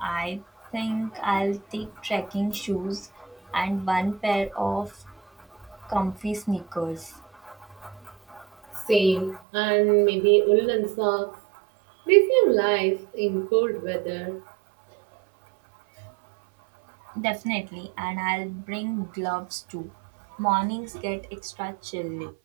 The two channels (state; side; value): drops out; left; at 9.4 s